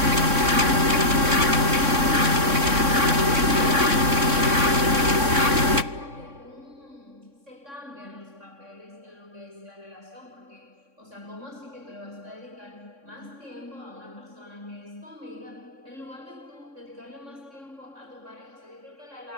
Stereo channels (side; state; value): left; late; 3.6 ms